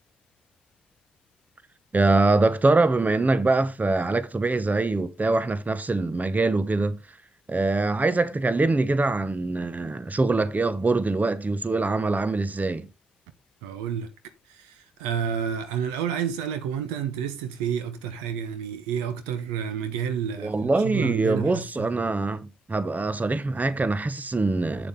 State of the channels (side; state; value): left; quieter; 3.1 dB